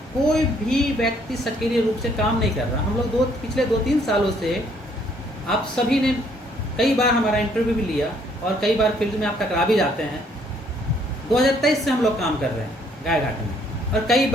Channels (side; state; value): both; normal; correlation 0.65